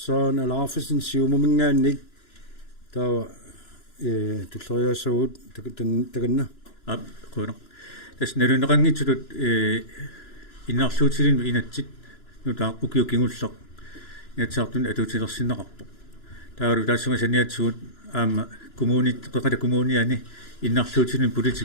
saana laafisen siumumingaannik taava tulleriaassagut takanna qono tässä neruneqangitsulut innarluutilinu inatsit nutaa ukiukingulleq нятсаартун атуутилерсиннеқарпо таару таассума саниатсуут аама коммунит қеқата коммуниани иннарлуутилун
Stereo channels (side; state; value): right; late; 2.9 ms